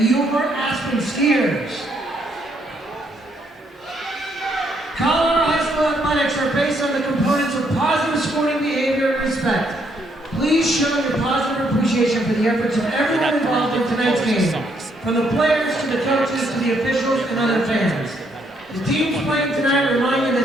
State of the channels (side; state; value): both; normal; correlation 0.72